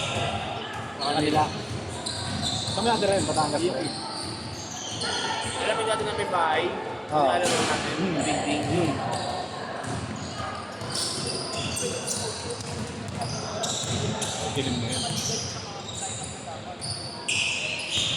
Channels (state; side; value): identical; both; correlation 1.00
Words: Sa kanila. Kami natin rin, Batangas pa rin. Alam natin na may bahay. Oo. Alam natin, ding-ding. Kilim mo yun.